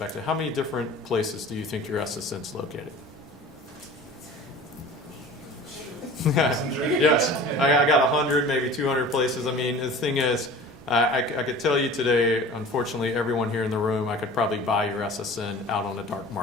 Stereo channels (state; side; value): normal; both; correlation 0.41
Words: how many different places do you think your SSN's located? Yes, I got 100, maybe 200 places. I mean, the thing is, I could tell you today, unfortunately, everyone here in the room, I could probably buy your SSN out on a dark